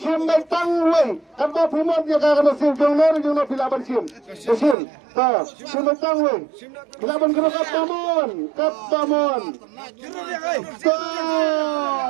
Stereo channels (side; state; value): left; drops out; at 4.8 s